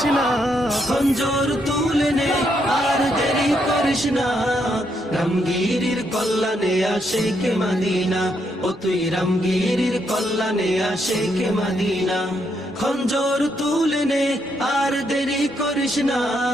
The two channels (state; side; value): normal; both; correlation 0.77